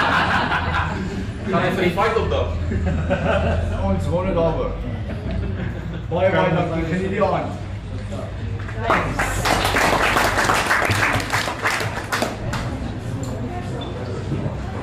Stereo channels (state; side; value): identical; both; correlation 1.00